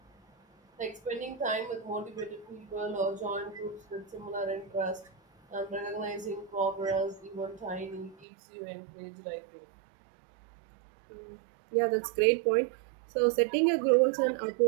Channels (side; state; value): left; drops out; at 8.2 s